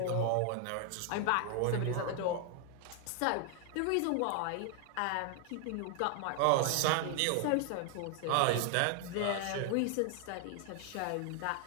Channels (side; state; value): both; different; correlation 0.00